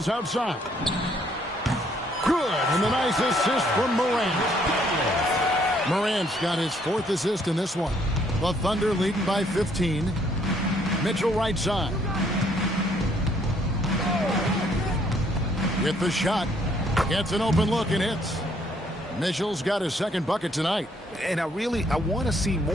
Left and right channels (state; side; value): normal; both; correlation 0.66